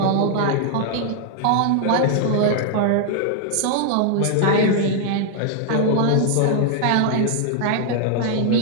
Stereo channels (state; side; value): different; both; correlation 0.00